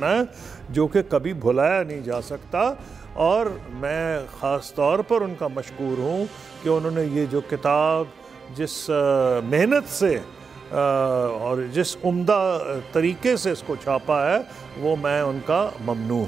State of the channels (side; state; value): left; quieter; 5.4 dB